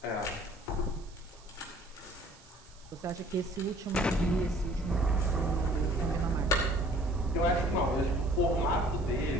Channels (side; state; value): right; noise; hiss, 25 dB below the sound